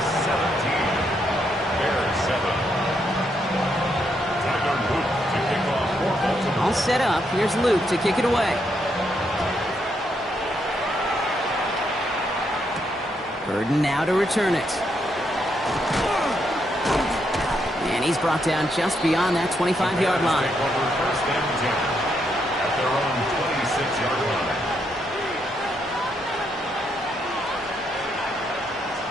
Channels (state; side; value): normal; both; correlation 0.77